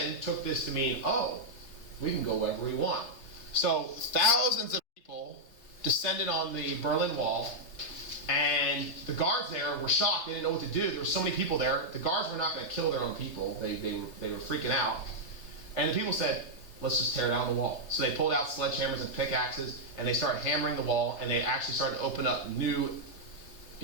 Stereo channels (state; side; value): late; right; 3.3 ms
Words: took this to mean, oh, we can go wherever we want. So thousands of people descended on the Berlin Wall, and the guards there were shocked. They didn't know what to do. There were so many people there. The guards were not going to kill their own people. They were freaking out. And the people said, let's just tear down the wall. So they pulled out sledgehammers and pickaxes, and they started hammering the wall, and they actually started to open up new,